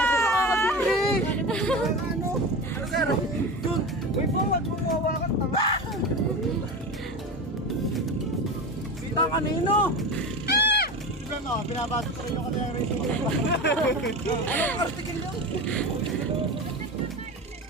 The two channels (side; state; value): both; normal; correlation 0.26